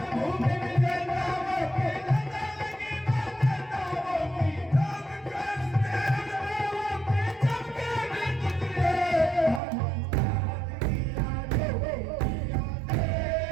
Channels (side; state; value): left; drops out; at 9.6 s